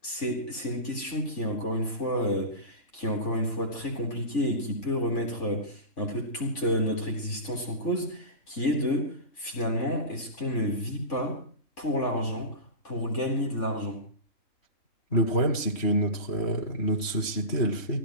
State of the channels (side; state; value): right; late; 3.5 ms